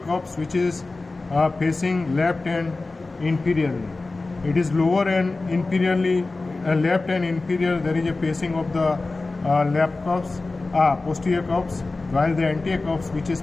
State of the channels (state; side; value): quieter; right; 3.4 dB